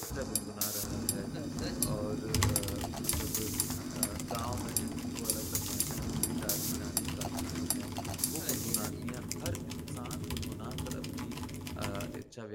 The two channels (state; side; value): identical; both; correlation 1.00